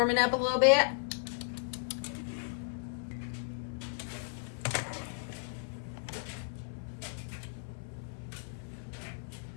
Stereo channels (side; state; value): right; silent; 54 dB below the other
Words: up a little bit.